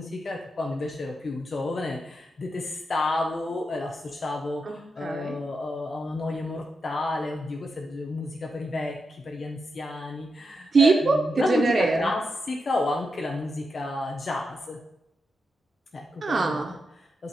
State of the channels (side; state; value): both; normal; correlation 0.86